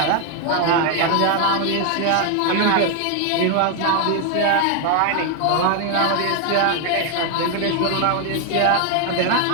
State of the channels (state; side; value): different; both; correlation 0.01